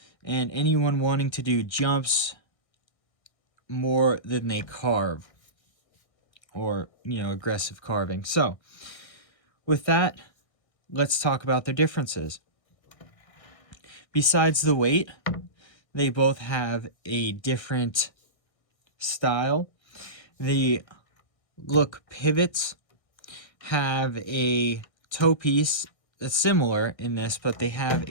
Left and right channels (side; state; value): right; late; 1.6 ms